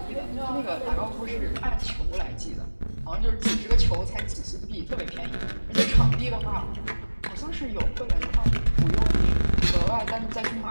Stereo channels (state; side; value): inverted; both; correlation -1.00